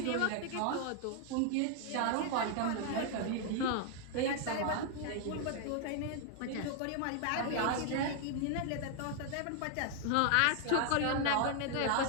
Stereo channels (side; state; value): both; different; correlation 0.00